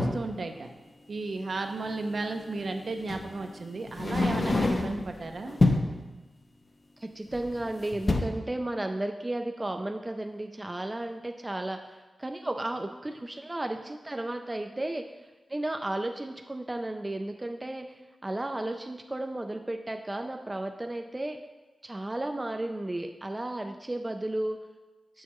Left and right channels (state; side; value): normal; both; correlation 0.94